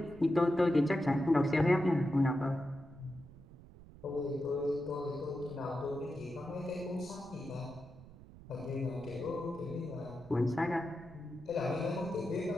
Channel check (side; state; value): right; noise; rumble, 19 dB below the sound